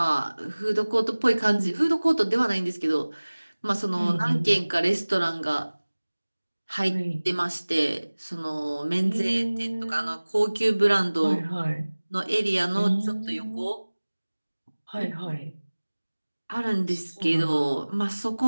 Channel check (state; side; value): inverted; both; correlation -1.00